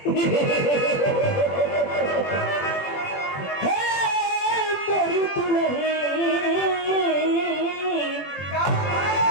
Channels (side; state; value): right; late; 21 ms